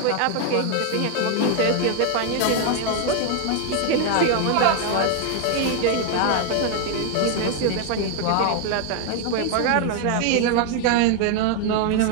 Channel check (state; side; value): different; both; correlation 0.00